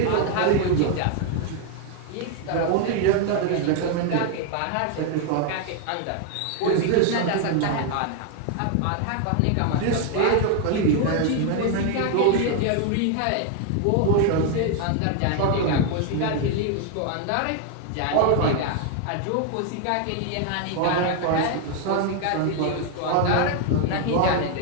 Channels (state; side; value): different; both; correlation 0.00